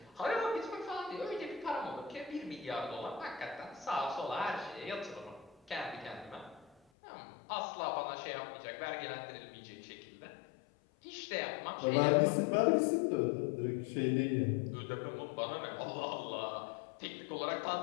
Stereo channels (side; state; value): right; drops out; at 6.8 s